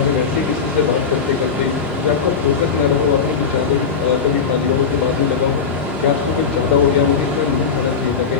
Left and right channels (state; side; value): quieter; right; 5.7 dB